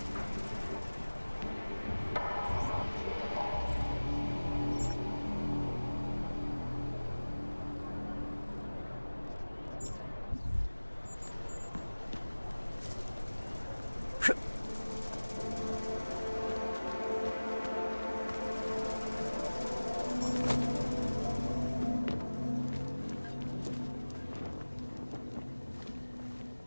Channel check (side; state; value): both; inverted; correlation -1.00